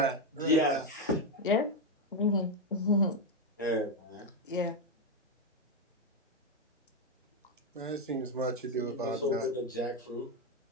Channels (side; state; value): both; normal; correlation 0.06